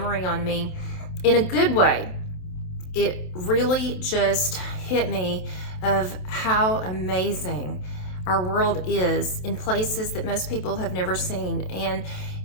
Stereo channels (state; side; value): late; right; 27 ms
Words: on me in a good way. It really just hit me of how amazing our world is in places that most people have never seen. And